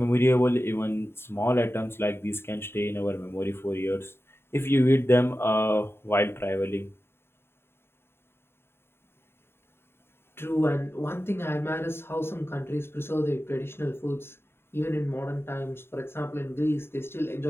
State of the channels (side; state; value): right; late; 0.11 ms